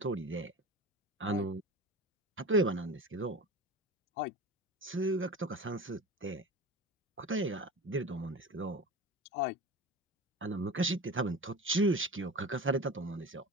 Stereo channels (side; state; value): both; normal; correlation 0.32